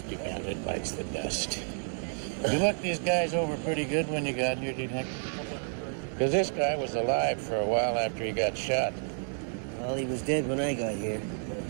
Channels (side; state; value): left; silent; 57 dB below the other